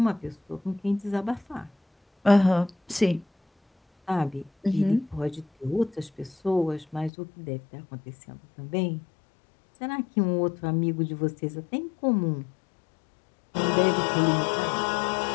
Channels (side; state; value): right; drops out; at 7.1 s